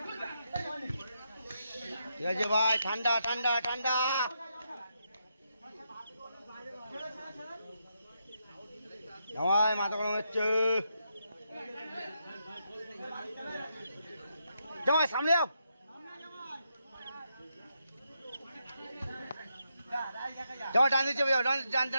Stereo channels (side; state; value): both; inverted; correlation -0.82